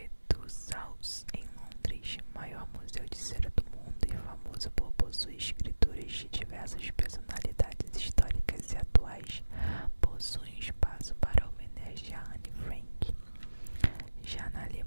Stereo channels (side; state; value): both; inverted; correlation -1.00